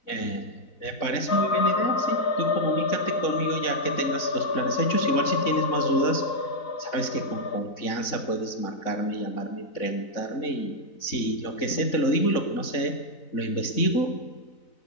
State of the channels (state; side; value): late; right; 4.0 ms